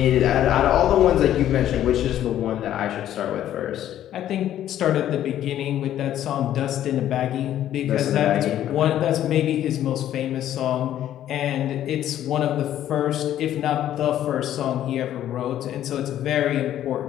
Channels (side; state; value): right; quieter; 11.7 dB